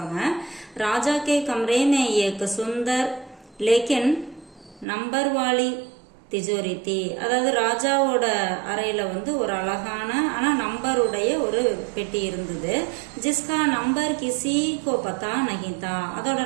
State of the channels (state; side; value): drops out; left; at 4.9 s